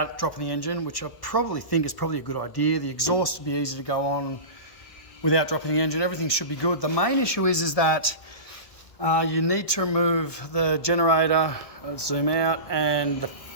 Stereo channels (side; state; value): right; late; 1.1 ms